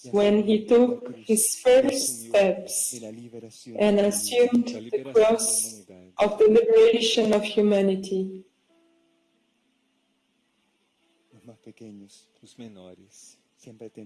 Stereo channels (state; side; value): identical; both; correlation 1.00